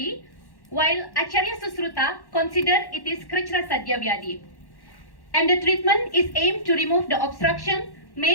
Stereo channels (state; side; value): late; right; 1.1 ms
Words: while Acharya Susruta consider it is Krichra Sadhya Vyadi. And the treatment is aimed to remove the obstruction